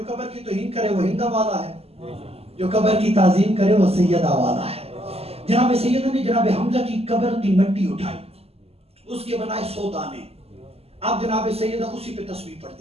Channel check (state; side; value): late; left; 0.29 ms